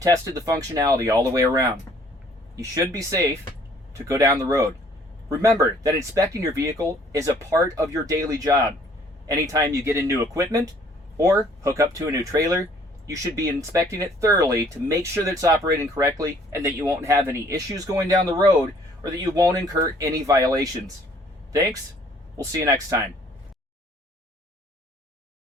the functionality all the way around. You should be safe to go down the road. Remember that inspecting your vehicle is a part of your daily job. Anytime you get in new equipment or hook up to a new trailer, you should be inspecting it thoroughly to make sure that it's operating correctly and that you won't have any issues going down the road or that you won't incur any violations. Thanks. We'll see you next time.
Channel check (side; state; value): both; normal; correlation 0.59